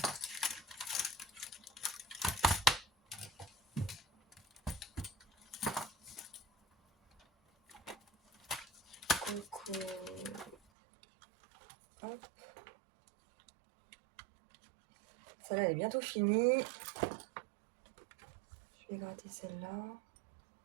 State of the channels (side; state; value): left; drops out; at 10.6 s